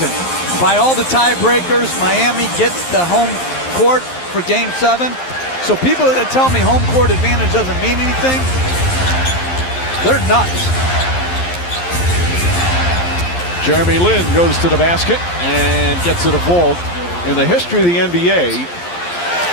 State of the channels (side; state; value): right; late; 11 ms